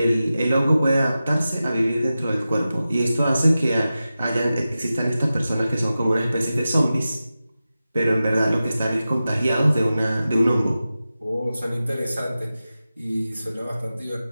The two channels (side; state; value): both; inverted; correlation -0.94